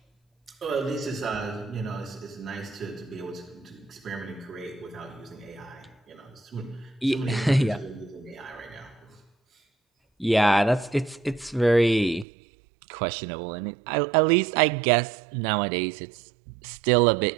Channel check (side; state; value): left; drops out; at 12.2 s